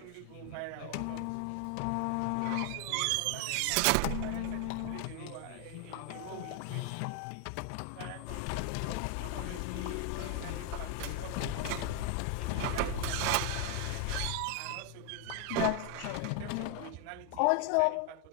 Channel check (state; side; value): different; both; correlation 0.01